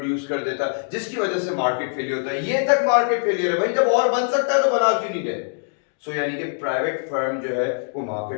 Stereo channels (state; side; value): silent; right; digital silence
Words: कर देता, जिसकी वजह से मार्केट फेलियर होता है। ये तक मार्केट फेलियर है भाई, जब और बन सकता है तो बना क्यों नहीं रहे। यानी कि प्राइवेट फर्म जो है वो